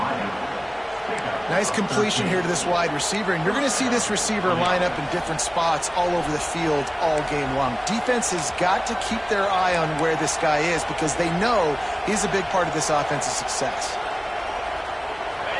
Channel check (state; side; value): identical; both; correlation 1.00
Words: Nice completion here to this wide receiver, and you're going to see this receiver line up in different spots all over the field all game long. Defense has got to keep their eye on where this guy is because they know he's a big part of this offense's success.